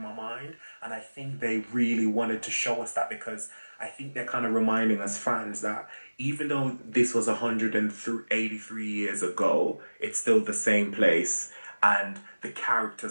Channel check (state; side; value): inverted; both; correlation -1.00